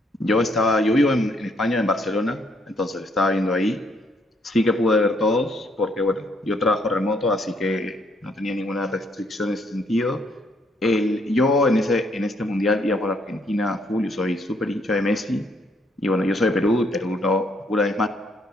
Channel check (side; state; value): both; normal; correlation 0.70